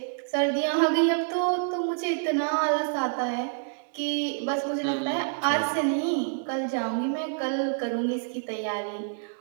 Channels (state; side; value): silent; left; digital silence